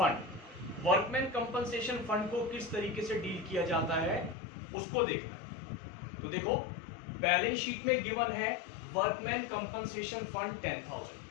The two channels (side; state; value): right; drops out; at 4.4 s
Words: Workman compensation fund को किस तरीके से डील किया जाता है उसको देखना है। तो देखो, बैलेंस शीट में गिवन है वर्कमैन कंपनसेशन फंड